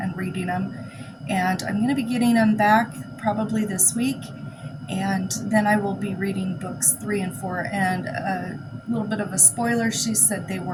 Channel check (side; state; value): both; identical; correlation 1.00